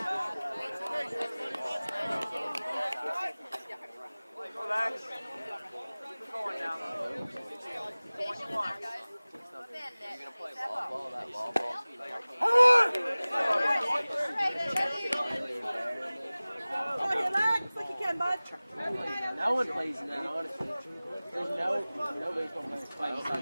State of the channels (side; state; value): both; inverted; correlation -0.99